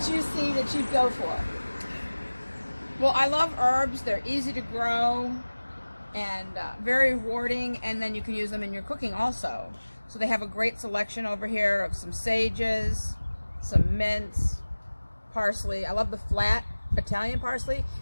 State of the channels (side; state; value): both; inverted; correlation -1.00